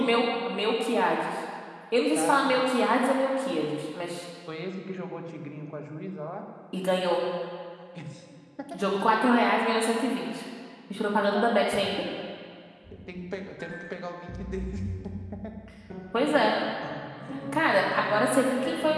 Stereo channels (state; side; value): identical; both; correlation 1.00